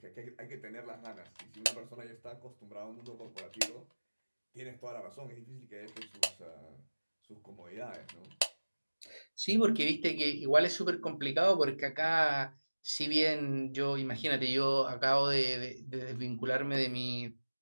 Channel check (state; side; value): inverted; both; correlation -1.00